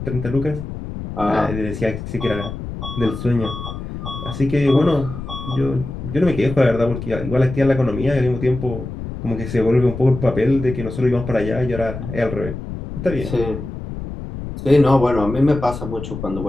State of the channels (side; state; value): left; noise; rumble, 8 dB below the sound